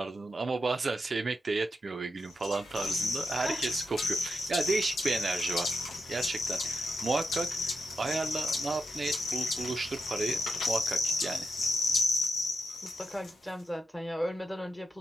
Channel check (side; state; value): both; normal; correlation 0.83